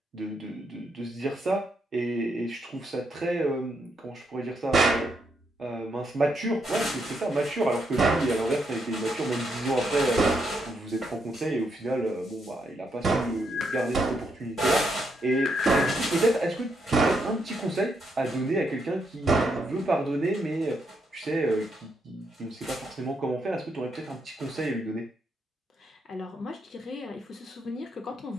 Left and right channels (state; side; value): normal; both; correlation 0.78